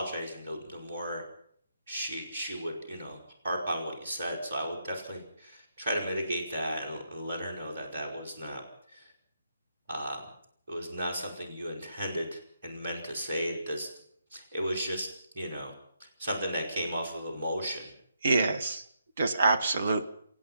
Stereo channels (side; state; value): both; inverted; correlation -0.79